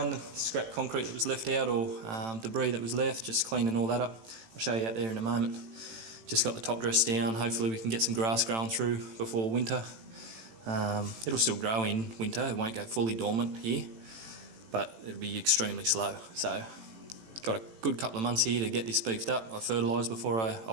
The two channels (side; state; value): left; late; 18 ms